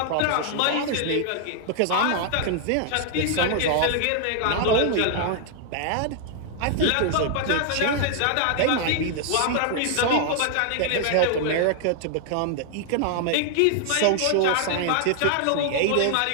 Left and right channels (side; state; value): both; different; correlation 0.00